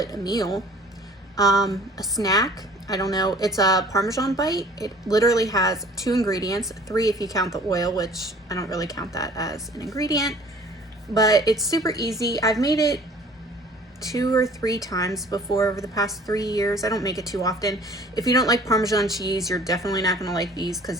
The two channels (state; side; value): normal; both; correlation 0.51